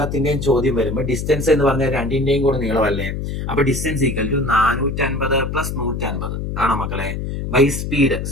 ചോദ്യം വരുമ്പോൾ ഡിസ്റ്റൻസ് എന്ന് പറഞ്ഞാൽ രണ്ടിന്റെയും കൂടെ നീളമല്ലേ. അപ്പൊ ഡിസ്റ്റൻസ് ഈക്വൽ ടു 450 പ്ലസ് 150 ആണോ മക്കളെ? ബൈ സ്പീഡ്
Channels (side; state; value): left; noise; hum, 4 dB below the sound